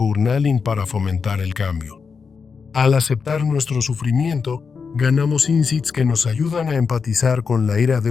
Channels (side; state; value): right; quieter; 5.5 dB